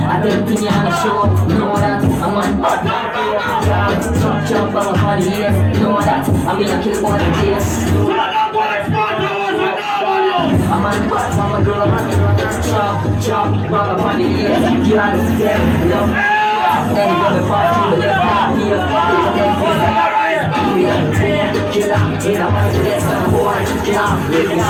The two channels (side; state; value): both; identical; correlation 1.00